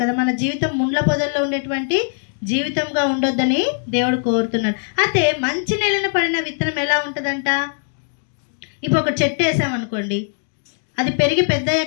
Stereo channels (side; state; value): right; silent; digital silence